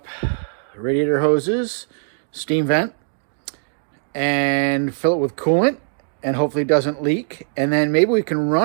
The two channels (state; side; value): silent; left; 65 dB below the other